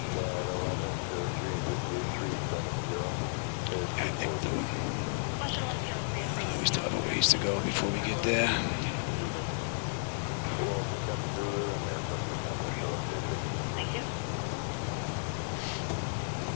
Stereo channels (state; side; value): silent; right; digital silence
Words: I think we still have a ways to go before we get there. Thank you.